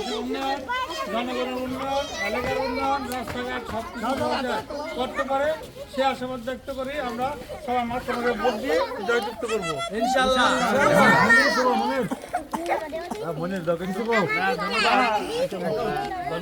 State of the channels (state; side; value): identical; both; correlation 1.00